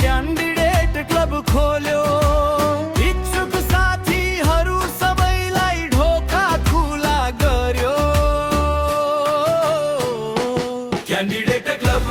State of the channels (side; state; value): both; identical; correlation 1.00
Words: क्यान्डिडेट क्लब खोल्यो, इच्छुक साथीहरू सबैलाई ढोका खुला गर्यो। क्यान्डिडेट